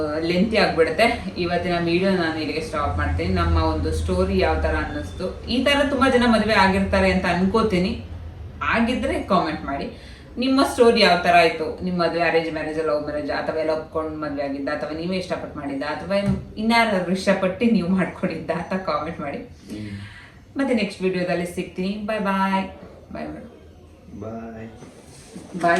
ಲೆಂತಿ ಆಗ್ಬಿಡುತ್ತೆ. ಇವತ್ತಿನ ವಿಡಿಯೋ ನಾನು ಇಲ್ಲಿಗೆ ಸ್ಟಾಪ್ ಮಾಡ್ತೀನಿ. ನಮ್ಮ ಒಂದು ಸ್ಟೋರಿ ಯಾವ ತರ ಅನ್ನಿಸ್ತು, ಈ ತರ ತುಂಬಾ ಜನ ಮದುವೆ ಆಗಿರ್ತಾರೆ ಅಂತ ಅನ್ಕೋತೀನಿ. ಆಗಿದ್ರೆ ಕಾಮೆಂಟ್ ಮಾಡಿ, ನಿಮ್ಮ ಸ್ಟೋರಿ ಯಾವ ತರ ಆಯ್ತು. ನಿಮ್ಮ ಮದುವೆ ಅರೇಂಜ್ ಮ್ಯಾರೇಜ್, ಲವ್ ಮ್ಯಾರೇಜ್, ಅಥವಾ ಎಲ್ಲ ಒಪ್ಕೊಂಡು ಮದುವೆ ಆಗಿದ್ದ, ಅಥವಾ ನೀವೇ ಇಷ್ಟಪಟ್ಟು ಮಾಡಿದ್ದ, ಅಥವಾ ಇನ್ಯಾರು ಇಷ್ಟಪಟ್ಟು ನೀವು ಮಾಡ್ಕೊಂಡಿದ್ದ ಅಂತ ಕಾಮೆಂಟ್ ಮಾಡಿ. ಮತ್ತೆ ನೆಕ್ಸ್ಟ್ ವಿಡಿಯೋದಲ್ಲಿ ಸಿಗ್ತೀನಿ. ಬಾಯ್ ಬಾಯ್ ಬಾಯ್ ಬಾಯ್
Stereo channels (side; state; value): both; identical; correlation 1.00